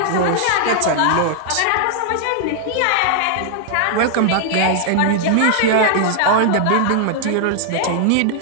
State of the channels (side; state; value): both; different; correlation -0.01